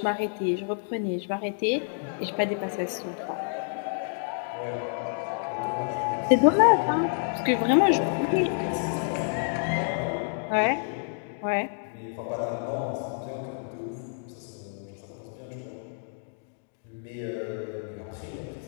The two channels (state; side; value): silent; right; digital silence